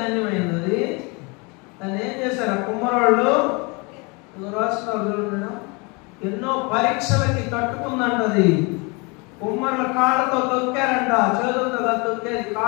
అది. దాన్ని ఏం చేశారు ఆ కుమ్మరోళ్ళు? రాష్ట్రాలు చూడండి, ఎన్నో పరీక్షలకి తట్టుకుందంట అది. కుమ్మరుల కాళ్ళతో తొక్కారంట, చేతులతో తొక్కేది,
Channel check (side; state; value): right; quieter; 29.4 dB